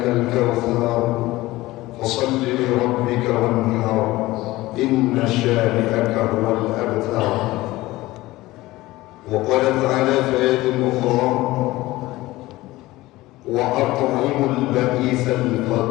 kautsar fasalli li rabbika wanhar inna shani'aka huwal abtar. Wa qala ta'ala fi ayatin ukhra wa at'imul ba'isal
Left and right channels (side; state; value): right; quieter; 18.4 dB